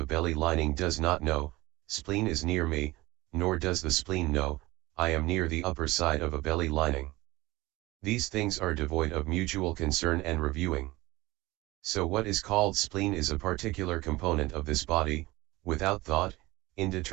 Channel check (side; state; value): left; quieter; 20.0 dB